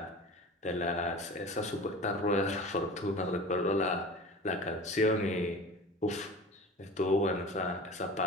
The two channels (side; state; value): both; normal; correlation 0.37